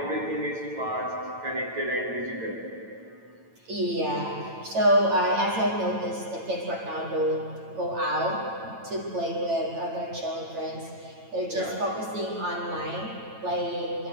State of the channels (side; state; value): left; late; 9.0 ms